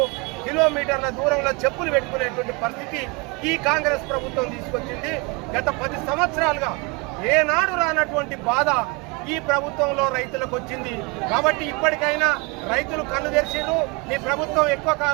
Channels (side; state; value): left; quieter; 28.6 dB